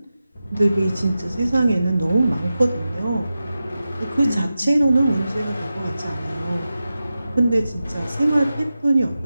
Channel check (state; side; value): inverted; both; correlation -0.93